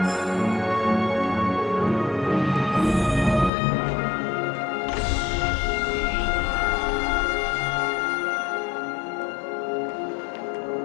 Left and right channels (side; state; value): right; drops out; at 3.5 s